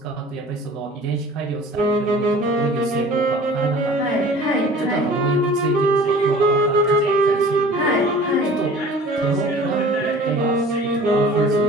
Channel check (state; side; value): normal; both; correlation 0.45